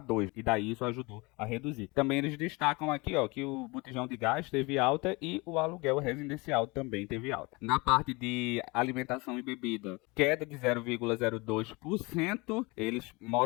2, e daí isso ajudou a reduzir. Também eles destacam aqui, ó, que o botijão de gás teve alta e o aluguel residencial também teve alta. Na parte de alimentação e bebida, queda de 0,02%. Eles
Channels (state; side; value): quieter; right; 25.7 dB